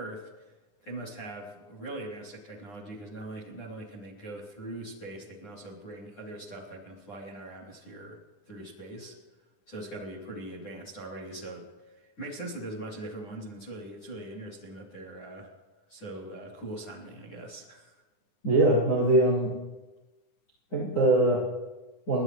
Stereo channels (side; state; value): right; late; 9.8 ms